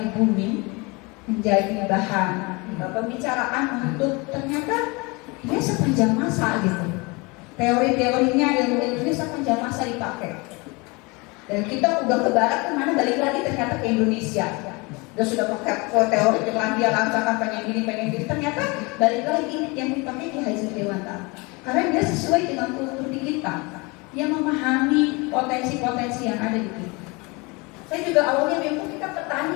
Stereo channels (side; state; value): right; quieter; 27.0 dB